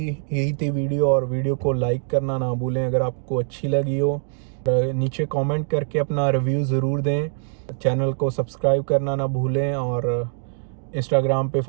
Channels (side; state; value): left; silent; digital silence